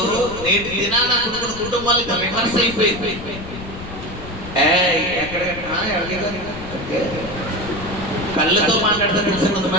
నేటి దినాన కొన్ని కుటుంబాలకు రివర్స్ అయిపోయింది. కళ్ళతో మాట్లాడతారు తెలుసు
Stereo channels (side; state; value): left; noise; rumble, 12 dB below the sound